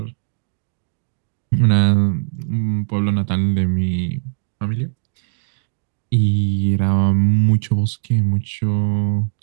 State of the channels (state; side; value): silent; left; digital silence